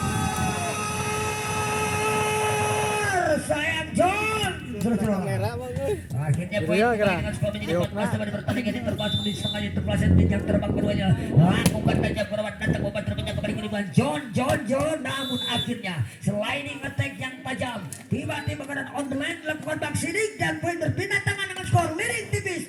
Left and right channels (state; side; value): identical; both; correlation 1.00